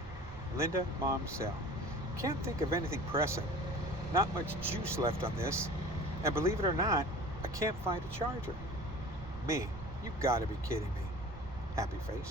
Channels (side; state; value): right; noise; rumble, 14 dB below the sound